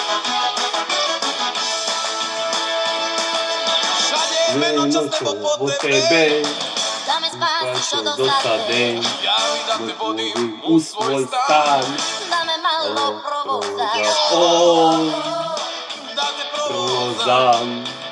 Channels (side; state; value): both; identical; correlation 1.00